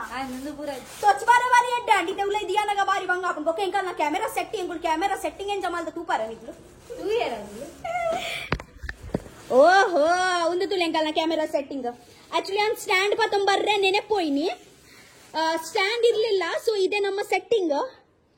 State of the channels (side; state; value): both; identical; correlation 1.00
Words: तो अच्छबारे वाली है डांडी ते उले दिया ना बारी बंगा अपन को केंका ना कैमरा सेटिंग एन जमाल तू पारा निकलो तू ये रंग ಓಹೋ ಒಂದು ತುಲೆಂಕಲ್ನ ಕ್ಯಾಮೆರಾ ಸೆಟ್ಟಿಂಗ್. ಆಕ್ಚುಲಿ ನಾನು ಸ್ಟ್ಯಾಂಡ್ ಪತ್ತೊಂಬರ್ರೆ ನೆನೆಪೋಯ್ನಿ, ಸ್ಟ್ಯಾಂಡ್ ಇರ್ಲಿಲ್ಲ. ಸೊ ಇದೆ ನಮ್ಮ ಸೆಟ್ಟಿಂಗ್,